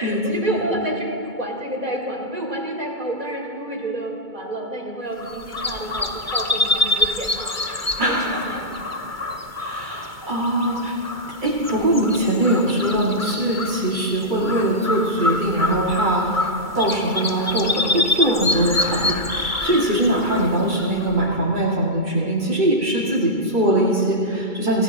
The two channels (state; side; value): late; left; 2.3 ms